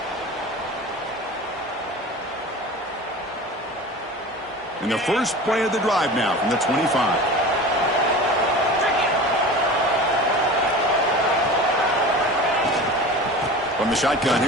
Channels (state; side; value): normal; both; correlation 0.35